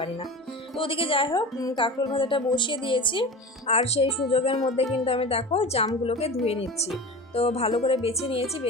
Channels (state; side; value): normal; both; correlation 0.32